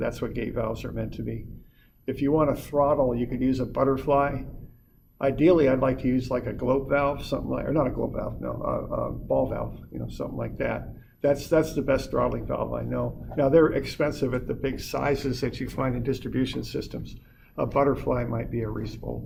what gate valves are meant to be. If you want to throttle, you could use a butterfly Ideally, I'd like to use like a globe valve, something like, or not a globe valve, no, a ball valve, something like that. That's the best throttling valve I know. Now, they're expensive at the big sizes that you find in distribution systems. A butterfly might be a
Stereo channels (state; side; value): identical; both; correlation 1.00